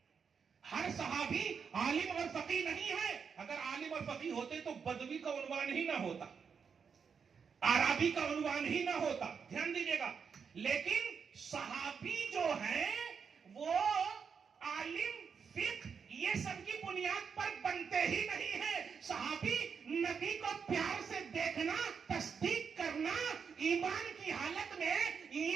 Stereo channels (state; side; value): quieter; left; 6.3 dB